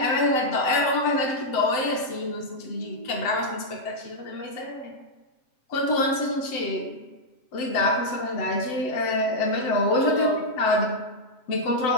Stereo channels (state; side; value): late; right; 7.7 ms